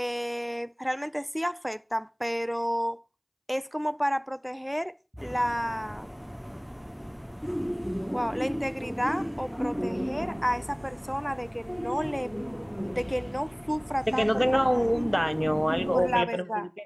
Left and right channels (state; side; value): identical; both; correlation 1.00